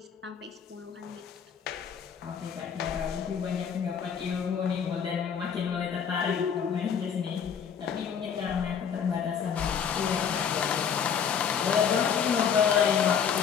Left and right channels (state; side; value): quieter; right; 7.4 dB